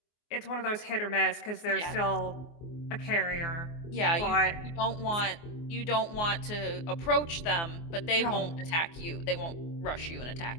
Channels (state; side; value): late; right; 24 ms